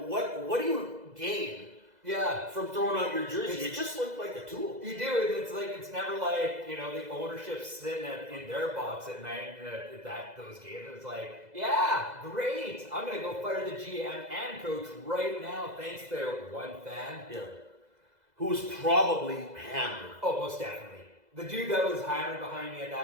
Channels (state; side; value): late; left; 2.0 ms